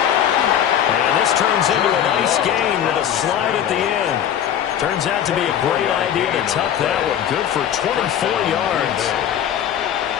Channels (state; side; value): quieter; right; 9.9 dB